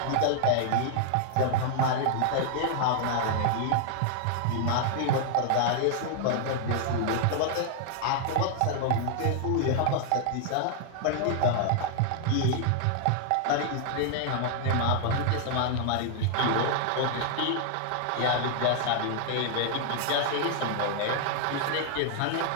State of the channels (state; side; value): different; both; correlation 0.00